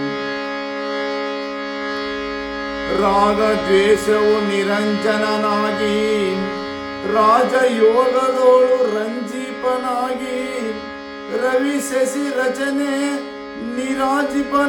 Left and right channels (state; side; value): identical; both; correlation 1.00